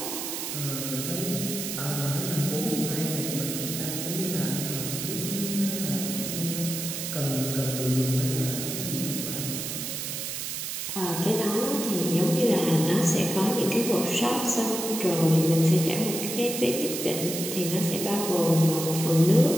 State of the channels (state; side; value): noise; right; hiss, 4 dB below the sound